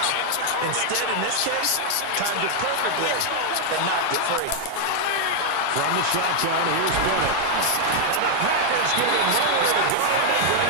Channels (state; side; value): different; both; correlation 0.00